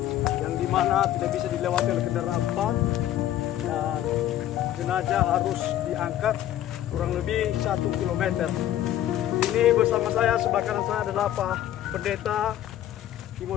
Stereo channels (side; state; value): right; quieter; 12.4 dB